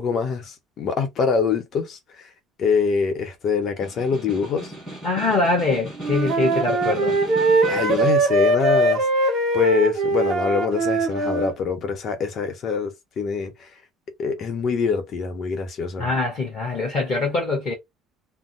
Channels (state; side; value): normal; both; correlation 0.44